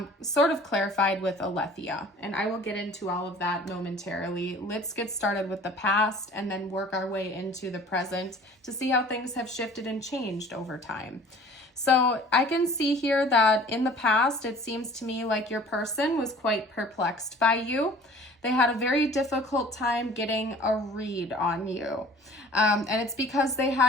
sort of clarified with Aletheia. And I will get into all of that momentarily. Let's get started with the past and then work our way into the present to see how things have shifted and changed over time. So I can see here that in the past, it seems to me like your person was quite perplexed by you. They had a very difficult time getting a read on you. And it's because they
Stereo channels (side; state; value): both; normal; correlation 0.48